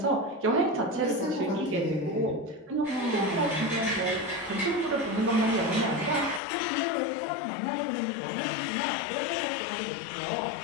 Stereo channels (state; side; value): drops out; right; at 6.4 s